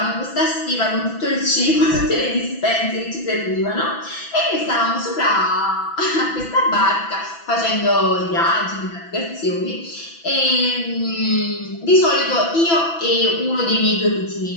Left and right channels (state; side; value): late; right; 6.0 ms